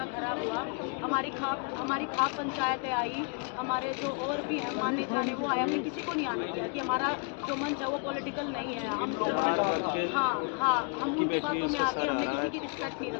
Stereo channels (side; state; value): right; quieter; 36.3 dB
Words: खराब हुआ। हमारी खाप पंचायतें आई, हमारे जो और भी हैं माने जाने वो आए, हमने किसी को नहीं आने दिया कि हमारा जो मंच है वो पॉलिटिकल नहीं है। हम सिर्फ हम उनकी बातों में आके हमने किसी की रिस्पेक्ट नहीं